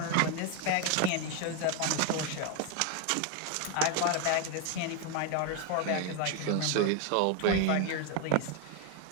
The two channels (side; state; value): both; different; correlation 0.01